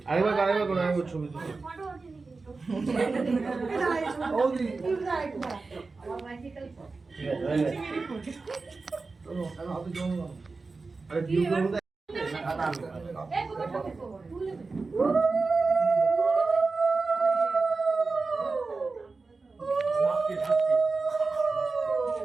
আরেকবার করে ছবি তুলে। ফটো ওঠেনি কিন্তু। বৌদি, ঠিক আছে, হয়ে গেছে। চলো, এখন হাতে জল দাও। আরে ভিউ করবো তো। খাতা আনবো। এই কোথাটা দেখো। তুলে দে। লাস্টে লাস্টে।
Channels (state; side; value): quieter; left; 4.0 dB